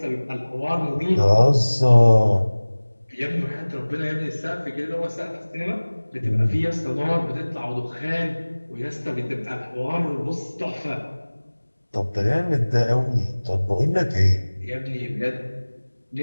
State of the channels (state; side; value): inverted; both; correlation -1.00